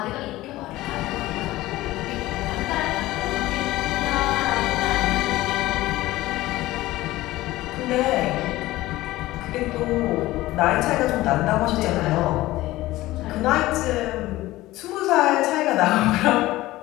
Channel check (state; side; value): quieter; right; 17.4 dB